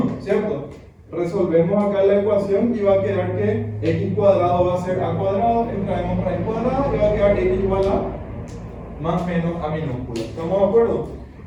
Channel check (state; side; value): identical; both; correlation 1.00